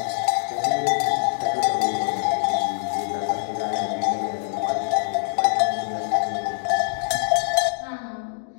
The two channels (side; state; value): right; silent; digital silence